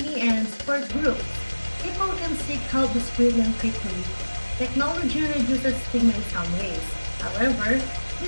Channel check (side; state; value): both; inverted; correlation -1.00